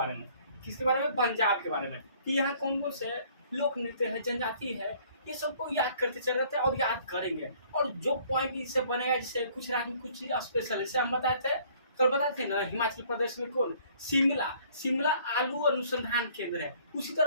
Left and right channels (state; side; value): inverted; both; correlation -0.58